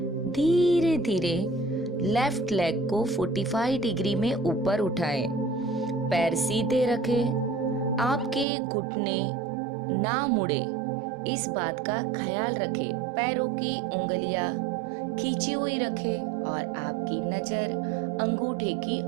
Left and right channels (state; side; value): drops out; left; at 8.5 s